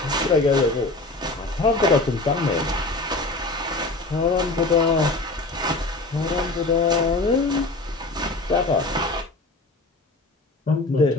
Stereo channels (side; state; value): right; quieter; 3.0 dB